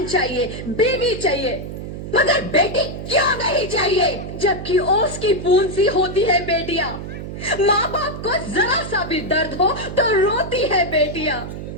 चाहिए, बीवी चाहिए, मगर बेटी क्यों नहीं चाहिए? जबकि ओस की बूंद सी होती है बेटियां, माँ बाप को जरा सा भी दर्द हो तो रोती है बेटियां,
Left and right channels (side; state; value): right; noise; hum, 8 dB below the sound